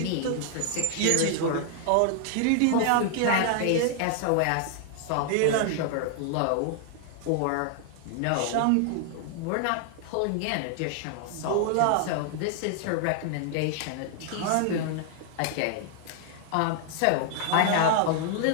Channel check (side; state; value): both; different; correlation 0.00